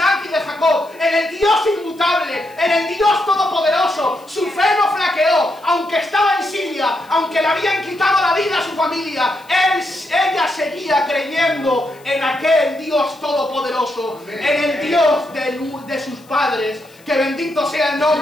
y de Jacob, en el Dios inmutable, en el Dios todopoderoso. Su fe no flaqueó, aunque estaba en Siria, aunque le habían quitado la vida a su familia. Ella seguía creyendo en aquel Dios todopoderoso, en el Dios de sus padres. Que bendito sea el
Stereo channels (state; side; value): noise; left; hiss, 28 dB below the sound